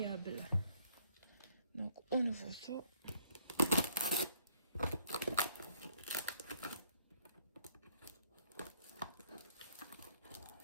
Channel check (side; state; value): both; inverted; correlation -0.66